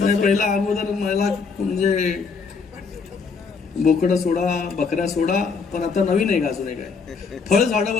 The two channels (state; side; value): quieter; right; 5.0 dB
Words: पहिला अगोदर मला म्हणजे बोकडं सोडा बकऱ्या सोडा, पण आता नवीन आहे का अजून एक आहे, फळ झाडं